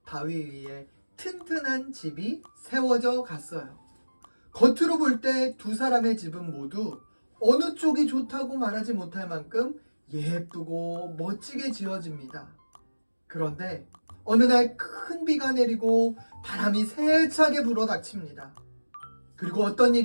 바위 위에 튼튼한 집이 세워져 갔어요. 겉으로 볼 때 두 사람의 집은 모두 어느 쪽이 좋다고 말하지 못할 만큼 예쁘고 멋지게 지어집니다. 그런데 어느 날 큰 비가 내리고 바람이 세차게 불어닥칩니다. 그리고 어떤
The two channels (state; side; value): inverted; both; correlation -1.00